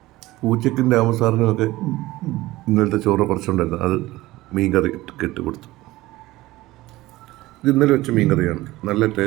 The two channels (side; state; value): left; quieter; 18.2 dB